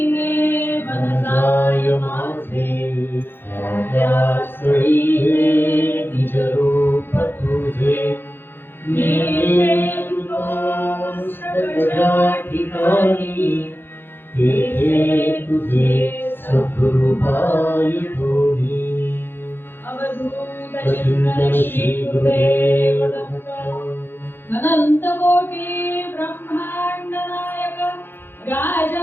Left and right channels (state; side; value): late; right; 0.10 ms